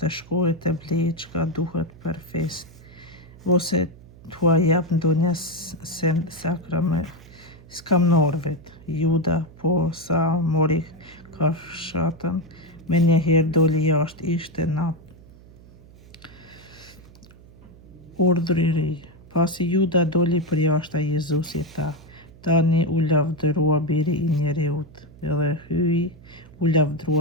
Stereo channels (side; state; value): right; noise; hum, 22 dB below the sound